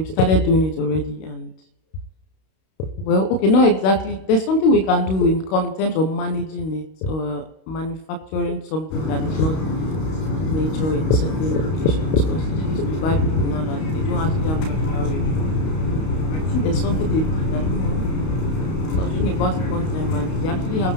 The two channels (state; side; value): late; right; 32 ms